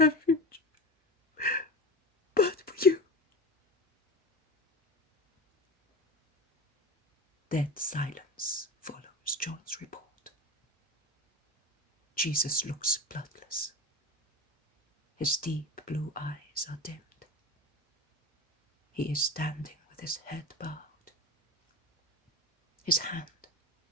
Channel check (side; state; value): both; normal; correlation 0.27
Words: but for you. Dead silence follows John's report. Jesus looks bloodless. His deep blue eyes are dimmed. He is standing with his head bowed, his hand